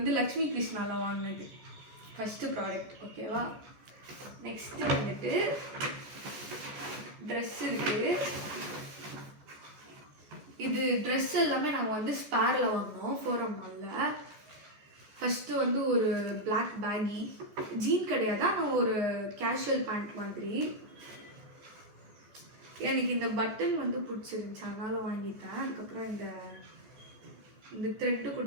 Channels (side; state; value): left; late; 14 ms